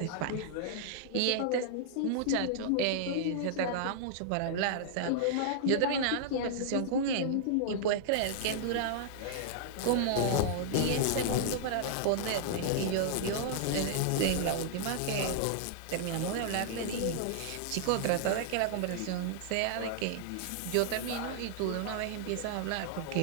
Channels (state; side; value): different; both; correlation -0.01